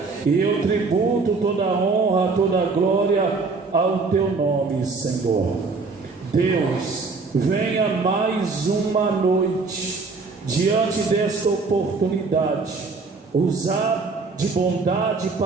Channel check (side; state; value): left; quieter; 4.2 dB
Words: E eu tributo toda a honra, toda a glória ao teu nome, Senhor. Deus, venha mais uma noite diante desta oportunidade, usar de bondade